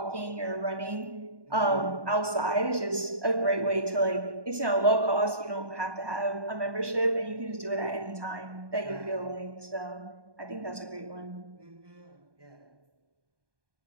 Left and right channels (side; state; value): left; late; 1.2 ms